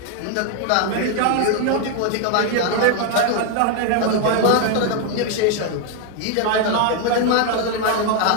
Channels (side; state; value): both; different; correlation 0.01